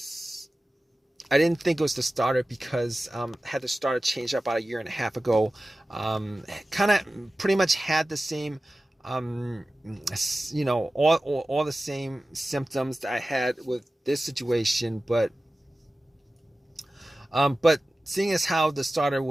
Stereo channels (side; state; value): both; normal; correlation 0.95